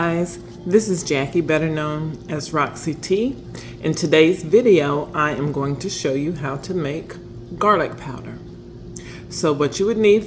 this is Jackie, better known as Roxy T. In today's video, I am going to show you how to make garlic powder. So what you would need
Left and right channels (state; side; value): identical; both; correlation 1.00